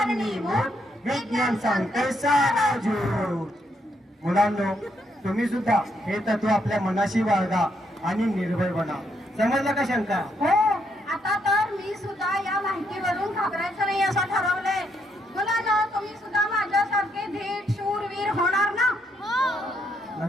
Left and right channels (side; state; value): both; normal; correlation 0.75